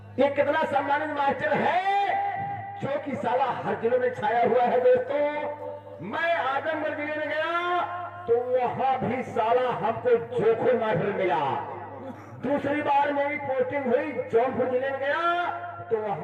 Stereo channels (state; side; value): identical; both; correlation 1.00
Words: ये कितना सम्मानित मास्टर है जो कि साला हर जिलों में छाया हुआ है। दोस्तों मैं आजमगढ़ जिले में गया तो वहां भी साला हमको जोखू मास्टर मिला। दूसरी बार मेरी पोस्टिंग हुई जौनपुर जिले में गया तो